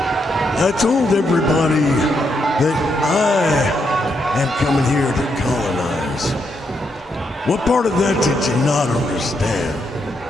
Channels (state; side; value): normal; both; correlation 0.79